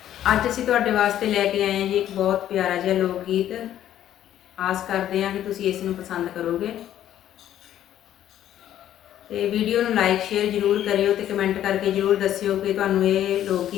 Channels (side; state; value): right; quieter; 11.6 dB